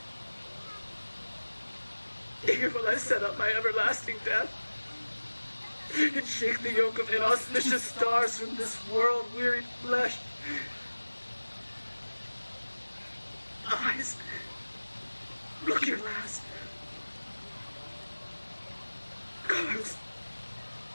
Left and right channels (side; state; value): both; inverted; correlation -1.00